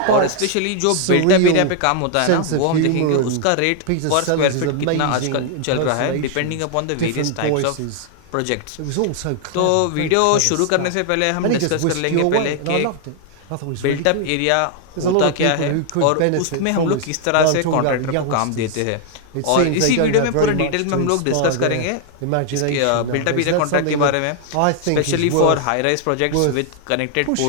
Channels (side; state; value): both; different; correlation 0.00